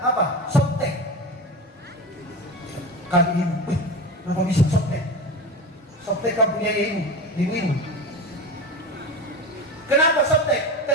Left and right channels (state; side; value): normal; both; correlation 0.26